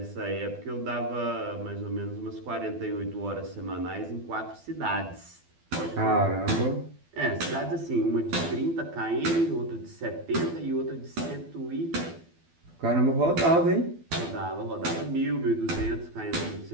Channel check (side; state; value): left; late; 12 ms